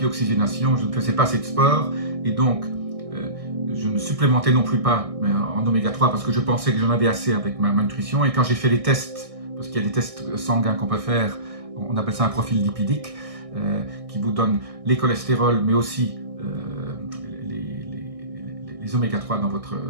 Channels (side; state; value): left; late; 1.6 ms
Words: oxygénation, je ne faisais pas assez de sport et donc je ne supplémentais non plus pas en oméga 3 parce que je pensais que j'en avais assez avec ma nutrition. Et quand j'ai fait les tests, parce qu'il y a des tests sanguins qu'on peut faire, on appelle ça un profil lipidique, qui vous donne les cholestérols, mais aussi les oméga 3 dans